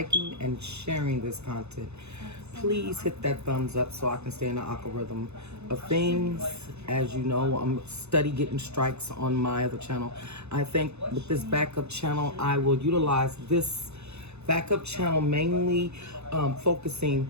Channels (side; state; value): left; late; 0.80 ms